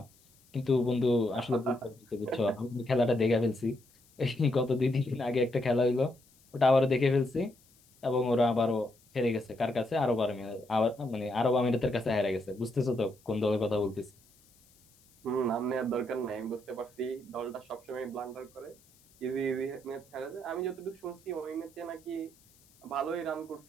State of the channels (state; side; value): noise; left; hiss, 30 dB below the sound